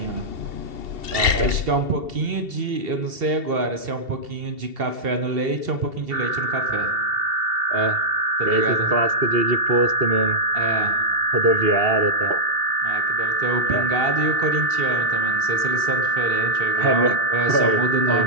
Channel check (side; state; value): left; late; 2.7 ms